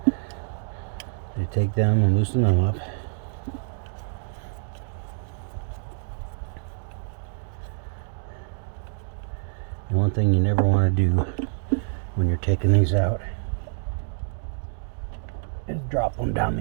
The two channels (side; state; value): left; silent; digital silence